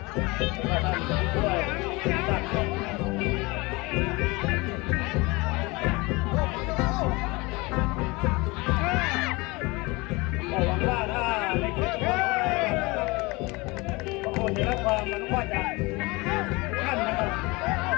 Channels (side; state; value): right; quieter; 24.5 dB